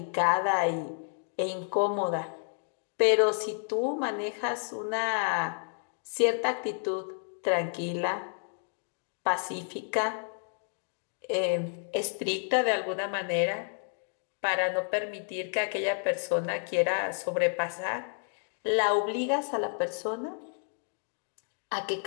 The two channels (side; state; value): right; silent; 57 dB below the other